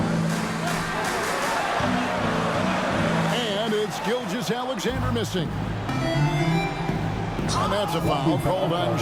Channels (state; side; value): identical; both; correlation 1.00